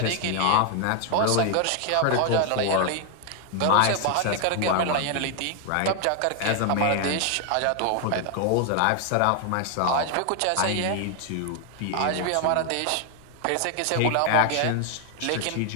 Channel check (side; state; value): both; different; correlation 0.00